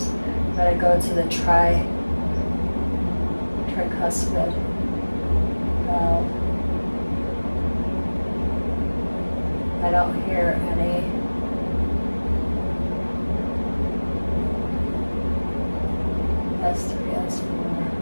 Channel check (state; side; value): inverted; both; correlation -1.00